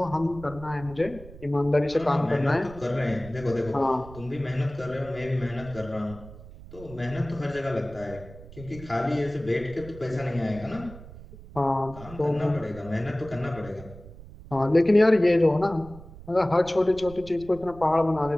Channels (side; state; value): right; noise; rumble, 17 dB below the sound